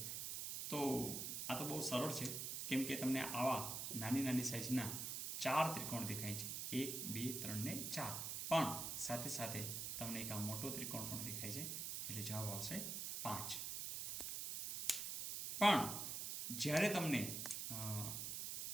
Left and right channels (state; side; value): noise; right; hiss, 3 dB below the sound